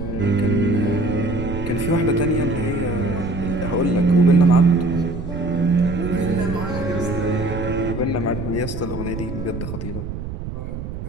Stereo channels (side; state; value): right; noise; rumble, 7 dB below the sound